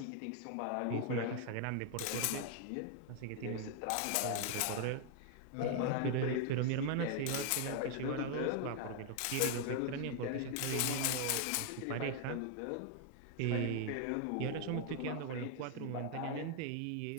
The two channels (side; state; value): both; different; correlation 0.00